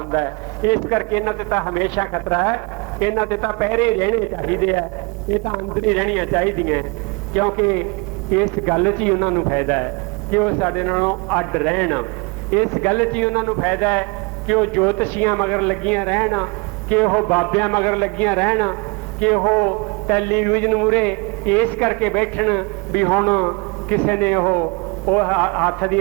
ਹੈ। ਇਸ ਕਰਕੇ ਇਹਨਾਂ ਤੇ ਤਾਂ ਹਮੇਸ਼ਾ ਖਤਰਾ ਹੈ, ਇਹਨਾਂ ਤੇ ਤਾਂ ਪਹਿਰੇ ਰਹਿਣੇ ਚਾਹੀਦੇ ਆ। ਇਹ ਤਾਂ ਅੰਦਰ ਹੀ ਰਹਿਣੀਆਂ ਚਾਹੀਦੀਆਂ, ਕਿਉਂਕਿ ਇਸ ਗੱਲ 'ਚ ਹੀ ਉਹਨਾਂ ਨੂੰ ਫਾਇਦਾ ਹੈ ਕਿ ਉਹ ਸਾਡੇ ਨਾਲੋਂ ਅੱਡ ਰਹਿਣ। ਇਸ ਗੱਲ 'ਚ ਹੀ ਉਹਨਾਂ ਨੂੰ ਫਾਇਦਾ ਹੈ ਕਿ ਉਹ ਜੋਤਸ਼ੀਆਂ ਮਗਰ ਲੱਗੀਆਂ ਰਹਿਣ, ਕਿ ਉਹ ਬਾਬਿਆਂ ਮਗਰ ਲੱਗੀਆਂ ਰਹਿਣ, ਕਿ ਉਹ ਟੈਲੀਵਿਜ਼ਨ ਮੂਹਰੇ ਇਸ ਕਰਕੇ ਬੈਠਣ ਵੀ ਹੁਣ ਕਿਸੇ ਨੇ ਉਹ ਹੱਥ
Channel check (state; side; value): quieter; left; 29.4 dB